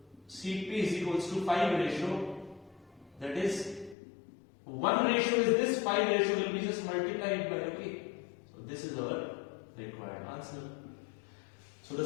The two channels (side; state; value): right; drops out; at 4.0 s